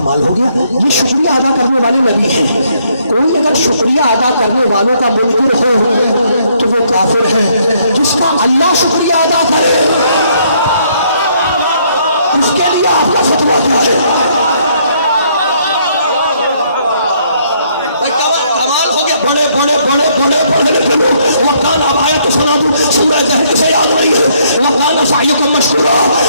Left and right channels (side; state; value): both; inverted; correlation -0.69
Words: हो गया, ये शुक्रिया अदा करने वाले नबी हैं। कोई अगर शुक्रिया अदा करने वालों का मुनकिर हो तो वो काफिर है। जिसका अल्लाह शुक्रिया अदा करे उसके लिए आपका फतवा क्या है? बड़े बड़े बड़े बड़े पढ़े लिखे लोग वकान आयत सुना दूं, सूरह जहर से याद नहीं है। वकान सायुकुम मशकूरा,